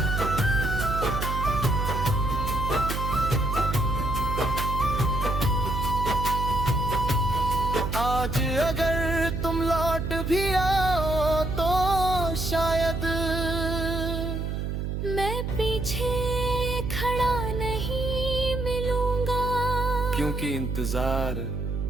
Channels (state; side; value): noise; right; hum, 2 dB below the sound